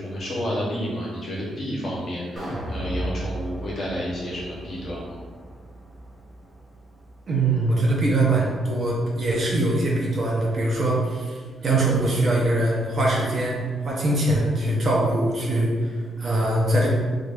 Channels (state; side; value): normal; both; correlation 0.72